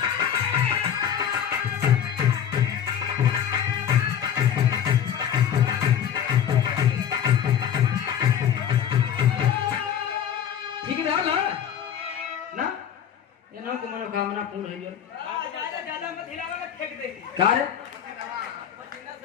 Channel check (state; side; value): quieter; right; 9.1 dB